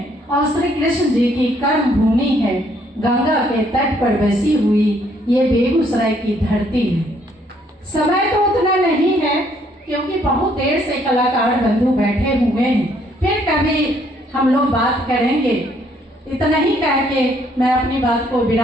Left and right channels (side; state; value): both; normal; correlation 0.67